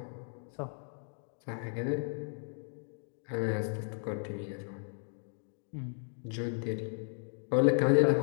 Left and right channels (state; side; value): silent; right; 55 dB below the other